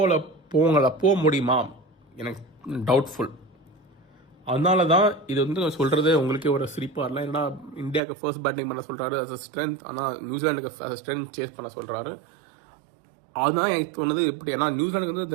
போக முடியுமா எனக்கு டவுட்ஃபுல். அதனால தான் இது வந்து சொல்கிறது உங்களுக்கே ஒரு சிரிப்பாக இருக்கலாம். ஏன்னா இந்தியாவுக்கு ஃபர்ஸ்ட் பேட்டிங் பண்ண சொல்கிறாரு அஸ் அ ஸ்ட்ரென்த், ஆனால் நியூசிலாண்டுக்கு அஸ் அ ஸ்ட்ரென்த் சேஸ் பண்ண சொல்கிறாரு. அதுதான் எனக்கு தோணுது இப்படி. ஏன்னா நியூசிலாண்டுக்கு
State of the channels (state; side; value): drops out; left; at 8.0 s